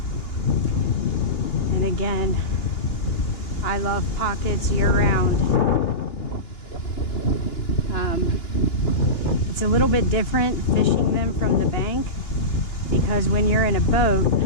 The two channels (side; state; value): right; late; 2.9 ms